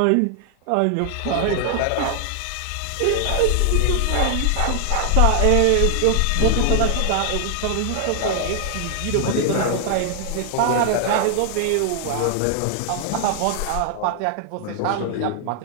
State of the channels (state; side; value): different; both; correlation 0.00